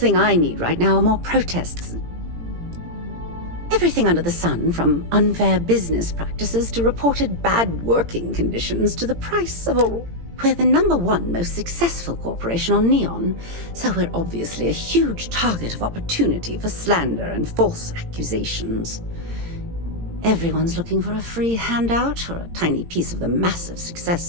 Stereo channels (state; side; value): late; left; 18 ms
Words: I need right now are more protests. Everything under the sun, from unfair business practices to reported bad working conditions to the price of a... We're the #1 most successful corporation on Neon, so we're obviously a huge target of opportunity for slander and false accusations. Everyone's looking for a free handout or a tiny piece of the massive success